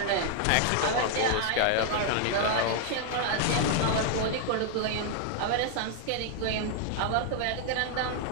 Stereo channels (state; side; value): different; both; correlation 0.00